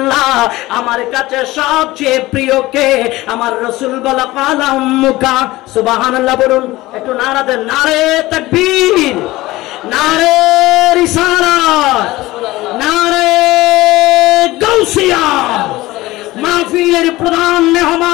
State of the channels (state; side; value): quieter; right; 18.6 dB